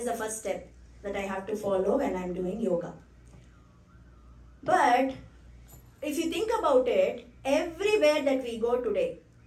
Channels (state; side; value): identical; both; correlation 1.00